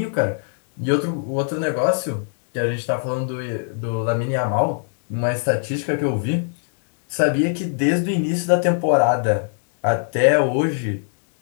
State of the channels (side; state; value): right; silent; digital silence